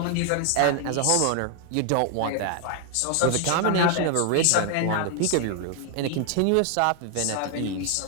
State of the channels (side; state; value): both; different; correlation 0.00